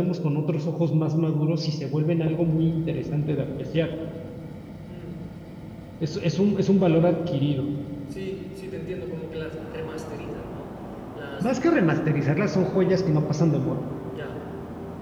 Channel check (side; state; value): both; identical; correlation 1.00